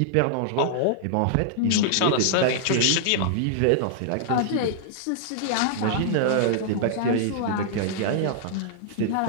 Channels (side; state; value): both; different; correlation -0.01